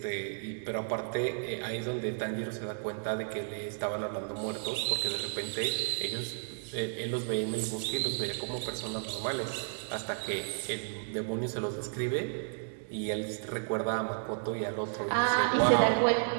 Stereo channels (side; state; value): left; silent; digital silence